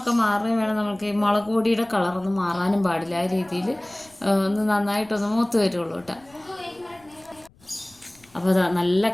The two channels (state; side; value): noise; left; rumble, 30 dB below the sound